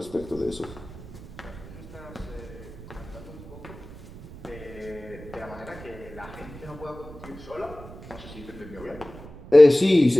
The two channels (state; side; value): noise; right; rumble, 16 dB below the sound